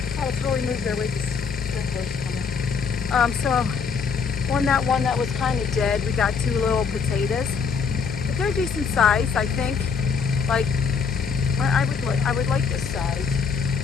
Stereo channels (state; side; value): quieter; right; 5.7 dB